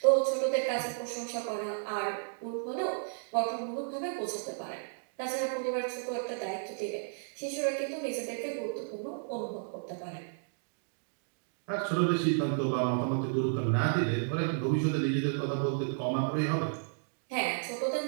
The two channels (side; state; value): left; silent; digital silence